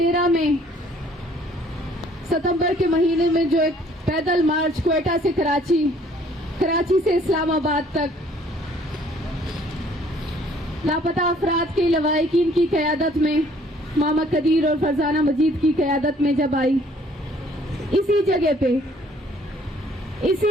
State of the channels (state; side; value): normal; both; correlation 0.59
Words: में सितंबर के महीने में जो एक पैदल मार्च क्वेटा से कराची से इस्लामाबाद तक लापता अफराद के लवाहिकीन की क़यादत में मामा कदीर और फरजाना मजीद की क़यादत में जब आई, इसी जगह पे,